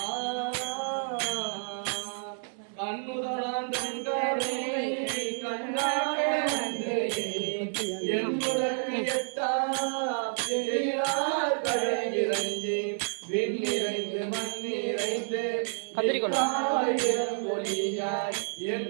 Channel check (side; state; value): left; silent; 58 dB below the other